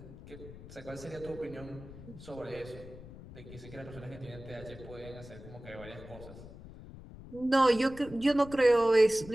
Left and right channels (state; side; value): noise; left; rumble, 16 dB below the sound